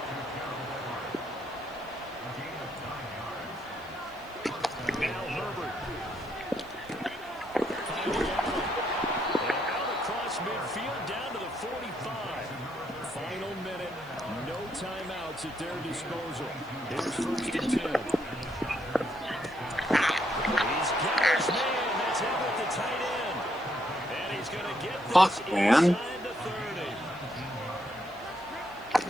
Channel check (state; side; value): noise; right; hiss, 26 dB below the sound